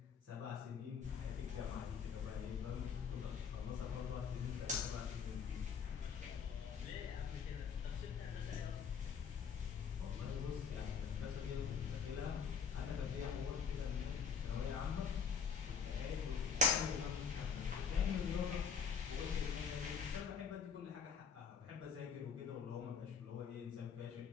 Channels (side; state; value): right; quieter; 6.4 dB